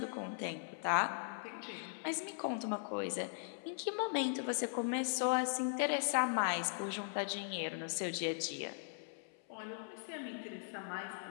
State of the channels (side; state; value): right; silent; 52 dB below the other